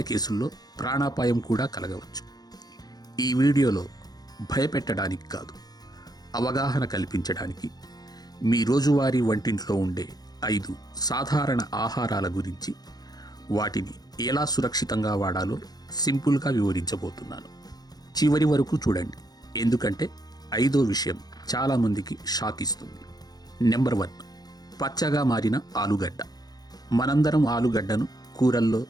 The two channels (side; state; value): right; late; 0.19 ms